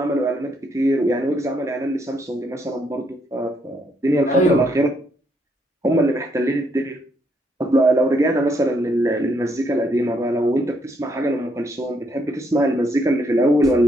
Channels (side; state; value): both; normal; correlation 0.73